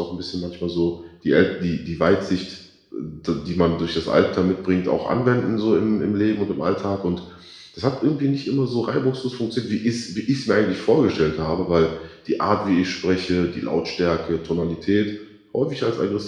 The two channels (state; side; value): identical; both; correlation 1.00